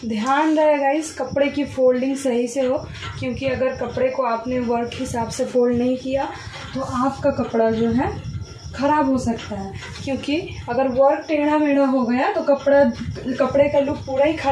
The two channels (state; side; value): identical; both; correlation 1.00